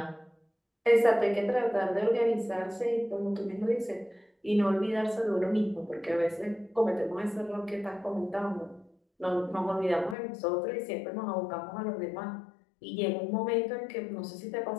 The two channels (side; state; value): right; drops out; at 10.2 s